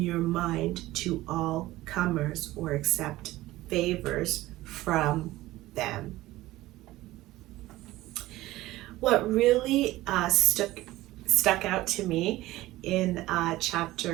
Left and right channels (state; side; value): quieter; left; 17.2 dB